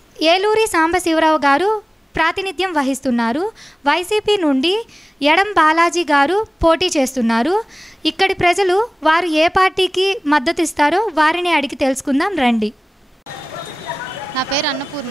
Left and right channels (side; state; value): both; normal; correlation 0.98